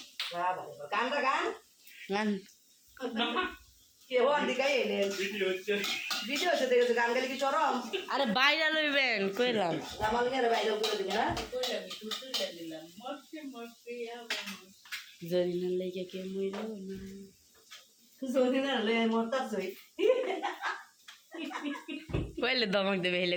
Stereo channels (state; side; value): identical; both; correlation 1.00